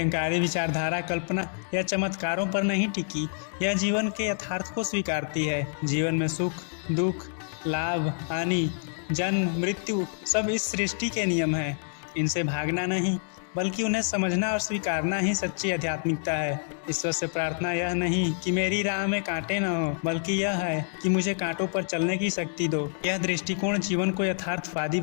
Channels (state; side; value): silent; right; digital silence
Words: विचारधारा कल्पना या चमत्कारों पर नहीं टिकी, यह जीवन के यथार्थ को स्वीकारती है। जीवन में सुख, दुख, लाभ, हानि, जन्म, मृत्यु सब इस सृष्टि के नियम हैं। इनसे भागना नहीं, बल्कि उन्हें समझना और स्वीकारना ही सच्ची आध्यात्मिकता है। ईश्वर से प्रार्थना यह नहीं कि मेरी राह में कांटे न हो, बल्कि यह है कि मुझे कांटों पर चलने की शक्ति दो। यह दृष्टिकोण जीवन को यथार्थवादी